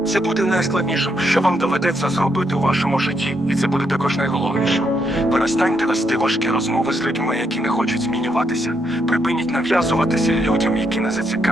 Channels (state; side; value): normal; both; correlation 0.77